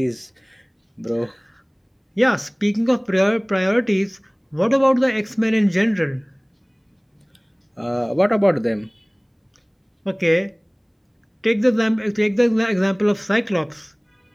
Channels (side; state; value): both; identical; correlation 1.00